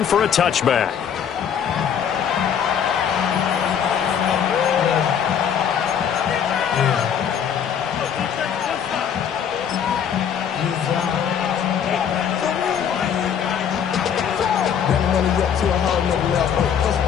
for a touchback.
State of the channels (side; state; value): right; quieter; 8.2 dB